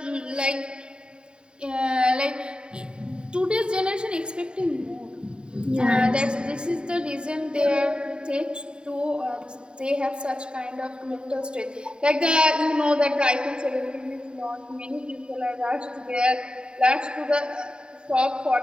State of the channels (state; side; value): late; left; 0.050 ms